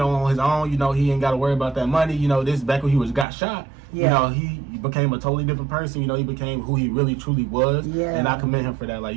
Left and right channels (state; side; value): drops out; left; at 3.2 s